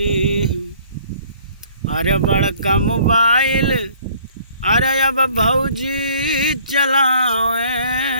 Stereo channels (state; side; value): inverted; both; correlation -0.56